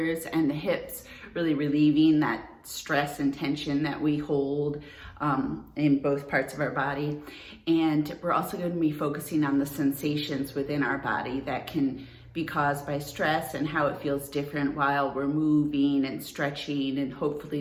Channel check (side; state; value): both; identical; correlation 1.00